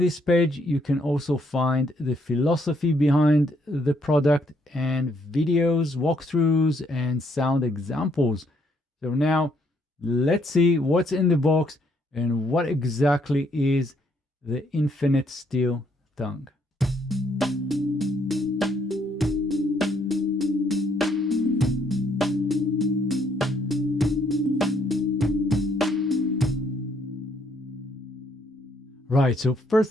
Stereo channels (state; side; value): normal; both; correlation 0.70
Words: page, you can also find the philosophy behind the product and videos, walkthroughs, and sound examples. So now let's see what's in the box and what exactly is the Infinite Steel Tongue. Right, so